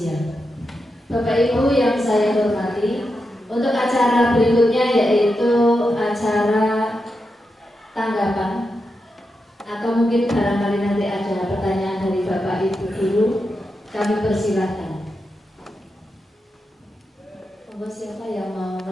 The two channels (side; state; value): both; normal; correlation 0.87